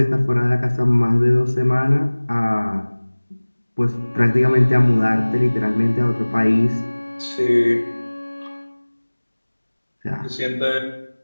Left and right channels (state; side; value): inverted; both; correlation -1.00